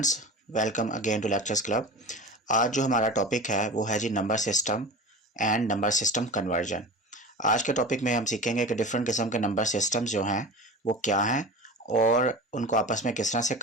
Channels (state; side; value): normal; both; correlation 0.32